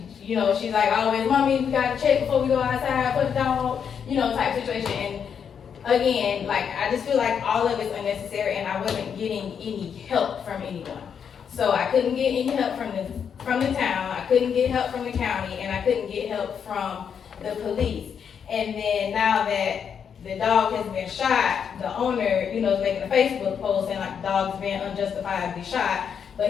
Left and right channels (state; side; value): quieter; right; 7.4 dB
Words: She's like always, mommy, we gotta check before we go outside, put the dog, you know, type situation. And again, like, I just feel like all of it's unnecessary and I wasn't getting any help from anyone. So I couldn't get any help from the town, I couldn't get help from the county, and I couldn't get help from the police. And then now that the dog has been shot, the owner, you know, is making a Facebook post saying like the dog's been unjustifiably shot,